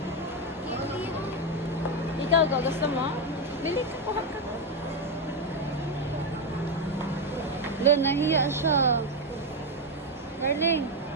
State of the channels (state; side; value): normal; both; correlation 0.06